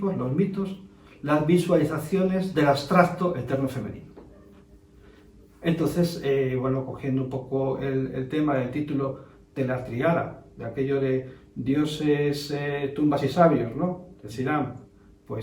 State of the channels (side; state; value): both; identical; correlation 1.00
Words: los mitos, las visualizaciones del abstracto eterno femenino. Entonces, bueno, cogiendo un poco el tema del título de la triada, de aquello de dioses, tumbas y sabios, ¿no? Decirán,